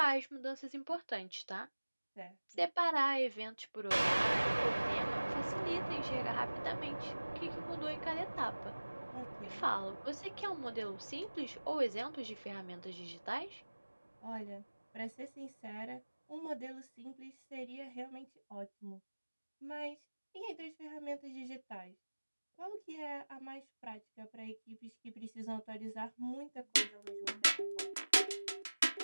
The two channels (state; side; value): inverted; both; correlation -1.00